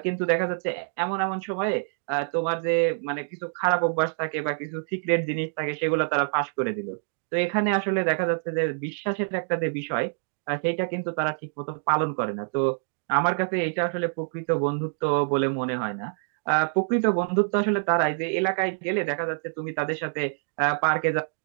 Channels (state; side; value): silent; left; digital silence